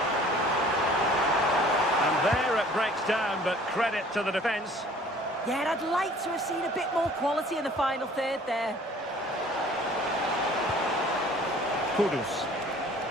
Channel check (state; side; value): normal; both; correlation 0.52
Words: And there it breaks down, but credit to the defence. Yeah, and I'd like to have seen a bit more quality in the final third there. Kudus.